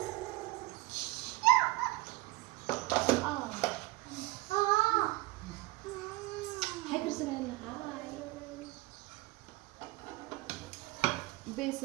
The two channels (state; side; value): quieter; left; 19.9 dB